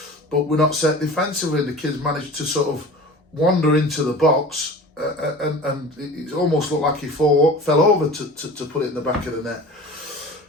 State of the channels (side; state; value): both; normal; correlation 0.39